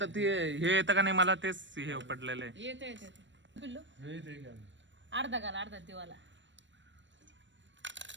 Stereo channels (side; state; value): left; late; 0.53 ms